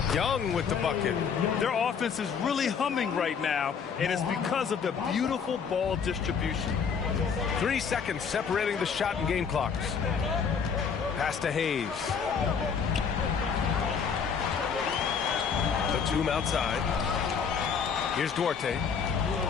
Young with the bucket. Their offense is really humming right now, and it's because of the beautiful ball distribution. 3 seconds separating the shot and game clocks. Pass to Hayes. The tomb outside. Here's Duarte.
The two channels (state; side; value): quieter; right; 6.5 dB